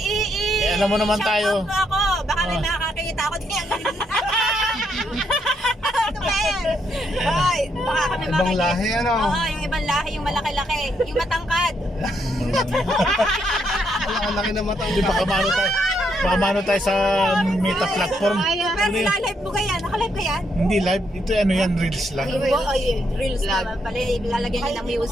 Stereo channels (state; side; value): normal; both; correlation 0.76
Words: alam mo naman tayo. Shout out mo ako. Baka may Oh. makakakita ako din. Ano ba yan? Hoy, baka kami Ibang lahi, ano? Oo, yung ibang lahi, yung malaki-laki. Yung matangkad. Ang laki na mata. Hindi baka maano tayo. Baka maano tayo sa meta platform. Pero nilalive mo ka yan? Nakalive ka yan? Hindi live. Ito ano yan, reels lang. Reels naman pala. Ilalagyan niya ng